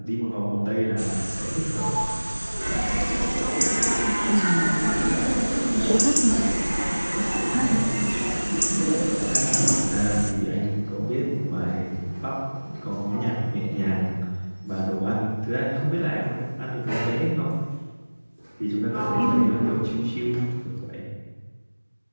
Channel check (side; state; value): both; inverted; correlation -1.00